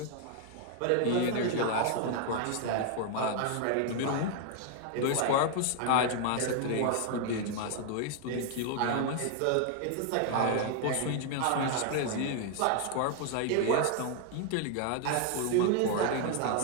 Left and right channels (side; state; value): both; different; correlation 0.00